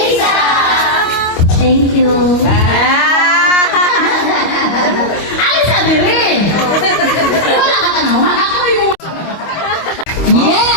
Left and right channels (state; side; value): late; right; 25 ms